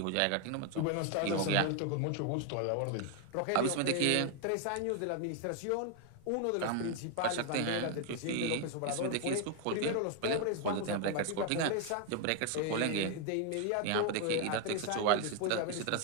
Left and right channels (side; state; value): both; different; correlation 0.00